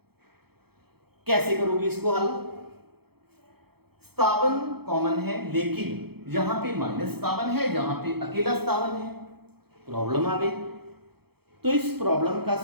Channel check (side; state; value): left; late; 0.96 ms